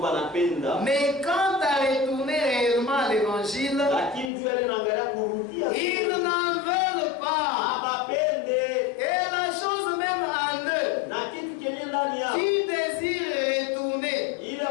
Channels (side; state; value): right; drops out; at 4.3 s